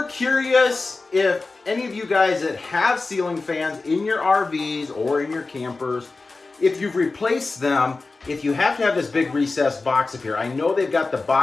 curious if any of you guys that have ceiling fans in your RVs or in your campers, if you've replaced them, if you have to have this big recessed box up here. I know they've got the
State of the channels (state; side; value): quieter; right; 3.7 dB